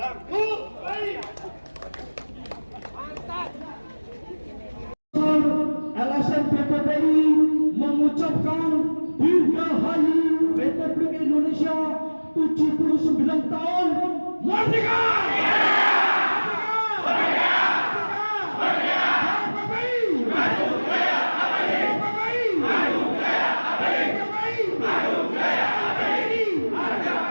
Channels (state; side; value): inverted; both; correlation -1.00